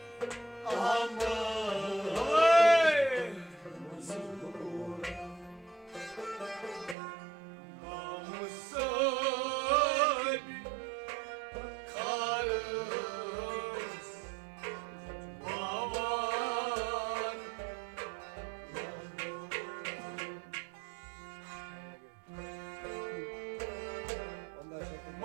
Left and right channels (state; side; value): drops out; left; at 7.0 s